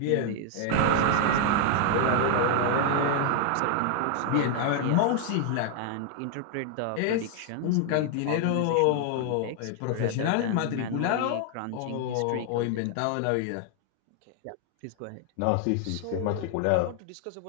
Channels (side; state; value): both; different; correlation 0.00